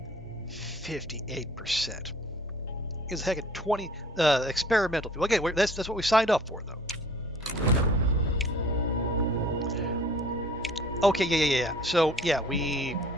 $58%. Is a heck of 20 experimental. Okay, that's what we signed up for, though. Okay, yeah. So yeah, we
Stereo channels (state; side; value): normal; both; correlation 0.51